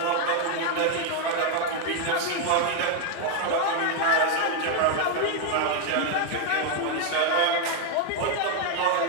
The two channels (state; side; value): different; both; correlation 0.01